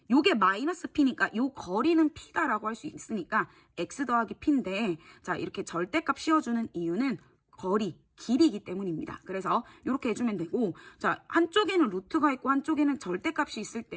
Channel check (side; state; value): both; identical; correlation 1.00